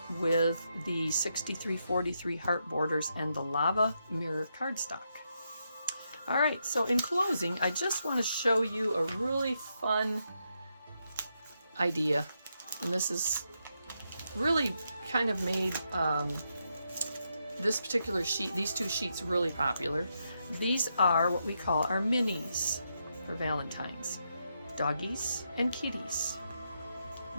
with the 6343 heart borders and the lava mirror cardstock. All right, so in closing, I just want to show you a really fun idea, and this is really kind of made this particular sheet, these 2 sheets, really popular. These are what we call our minis for Valentines, doggies and kitties.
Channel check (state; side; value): inverted; both; correlation -0.82